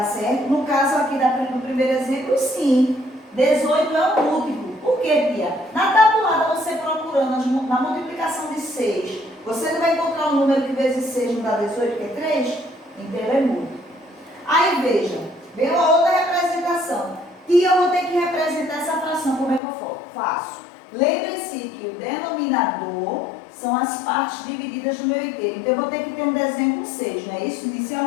certo? No caso aqui do primeiro exemplo, sim. 18 é um múltiplo. Por quê, Pia? Na tabuada, você procurando na multiplicação de 6, você não vai encontrar um número que vezes 6 não dá 18, que é 3? Então, ele é múltiplo. Aí, veja, vem uma outra representação. E eu vou ter que representar essa fração. Como é que eu faço? Lembre-se que o denominador são as partes divididas do meu inteiro. Então, eu vou ter que ter um desenho com 6, não é isso?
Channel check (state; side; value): drops out; right; at 19.6 s